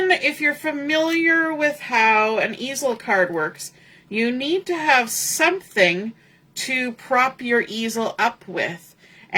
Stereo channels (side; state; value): both; identical; correlation 1.00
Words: if you're familiar with how an easel card works, you need to have something to prop your easel up with.